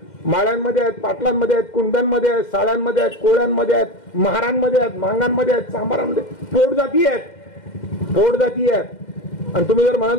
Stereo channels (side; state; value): right; late; 2.1 ms